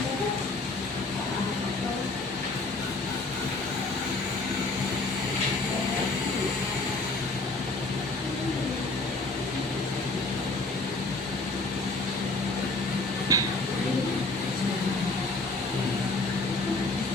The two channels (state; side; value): quieter; right; 3.1 dB